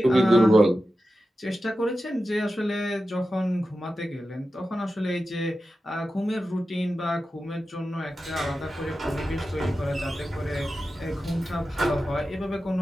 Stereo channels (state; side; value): normal; both; correlation 0.93